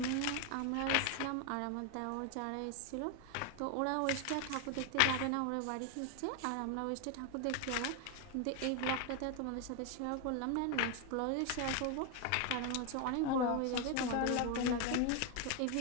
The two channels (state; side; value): different; both; correlation 0.01